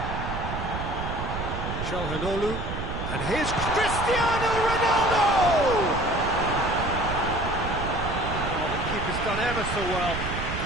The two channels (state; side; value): noise; right; rumble, 5 dB below the sound